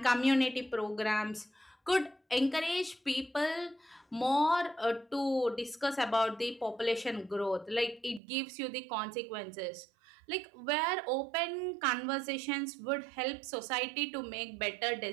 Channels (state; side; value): drops out; left; at 8.2 s